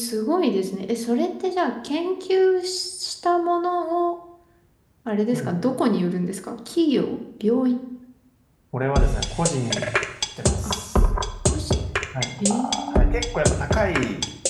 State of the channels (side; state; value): both; identical; correlation 1.00